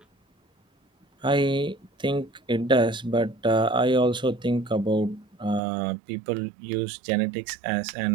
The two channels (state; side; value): drops out; left; at 5.6 s